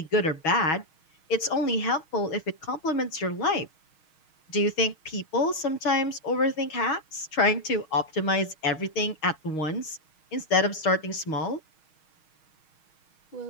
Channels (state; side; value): late; right; 6.4 ms